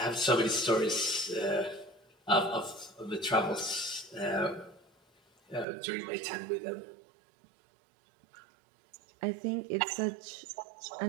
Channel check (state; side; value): drops out; left; at 5.7 s